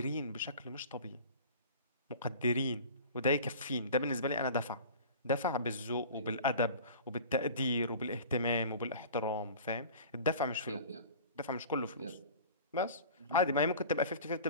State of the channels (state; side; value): inverted; both; correlation -0.41